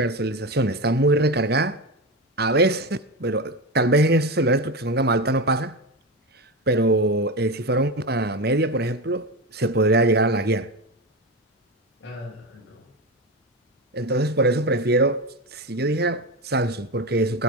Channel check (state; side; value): normal; both; correlation 0.18